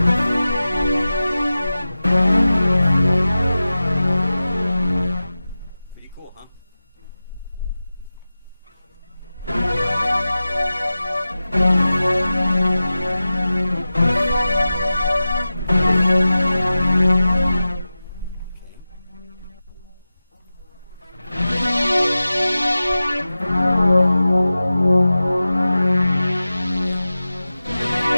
Pretty cool, huh?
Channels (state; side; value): inverted; both; correlation -0.95